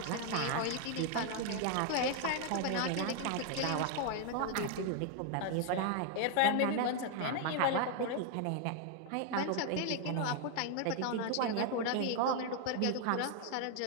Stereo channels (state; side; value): different; both; correlation 0.00